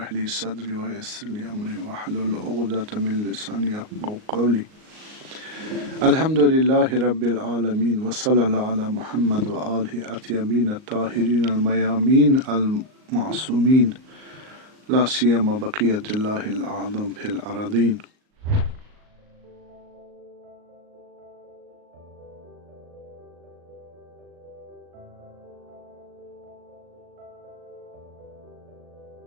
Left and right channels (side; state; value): left; late; 38 ms